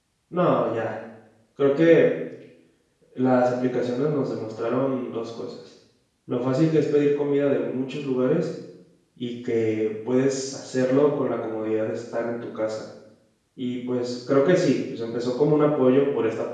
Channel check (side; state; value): both; identical; correlation 1.00